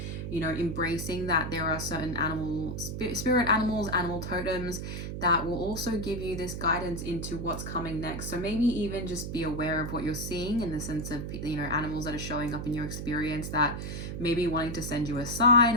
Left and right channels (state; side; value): noise; right; hum, 5 dB below the sound